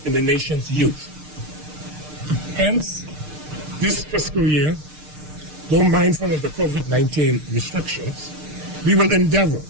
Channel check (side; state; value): left; late; 6.6 ms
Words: in the nation's youth. Hence, this fiscal year, though mindful of the COVID-19 restrictions, we will endeavor